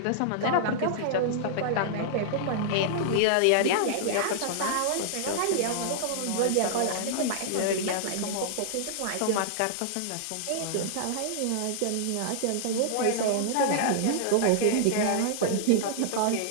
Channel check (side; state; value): both; different; correlation -0.01